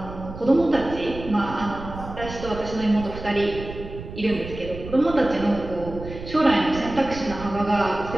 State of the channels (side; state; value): right; noise; rumble, 11 dB below the sound